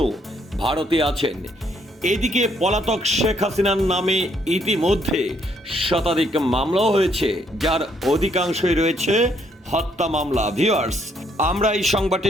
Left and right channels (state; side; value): normal; both; correlation 0.70